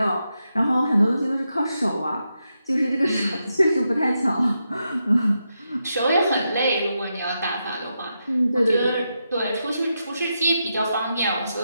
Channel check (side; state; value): both; inverted; correlation -0.85